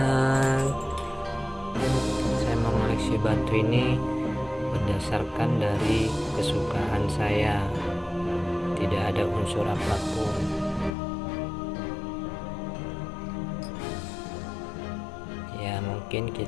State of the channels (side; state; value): right; drops out; at 10.9 s